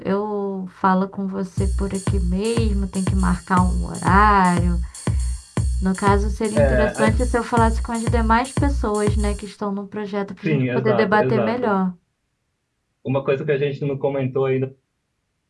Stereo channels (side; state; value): both; identical; correlation 1.00